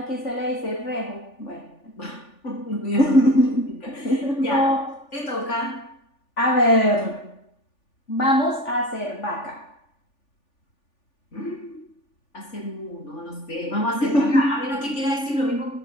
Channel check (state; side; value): late; right; 3.4 ms